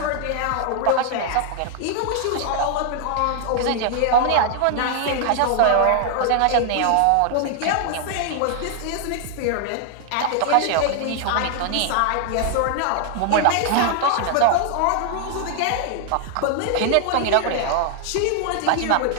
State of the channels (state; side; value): different; both; correlation 0.00